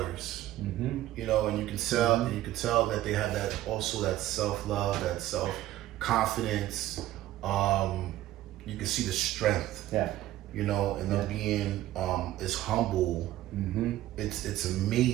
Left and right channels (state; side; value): quieter; left; 14.6 dB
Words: And you can tell that they have that self-love, that self-confidence. You can see the strength. Yeah. And them being as humble. It's